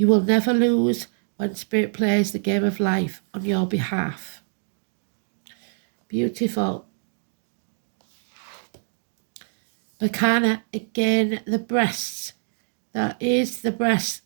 will never lose when Spirit plays the game of life on your behalf. Beautiful. Bacana, again, the breasts. That is the breast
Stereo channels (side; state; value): left; silent; digital silence